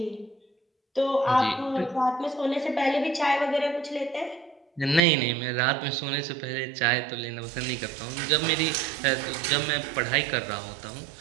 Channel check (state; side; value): drops out; left; at 5.0 s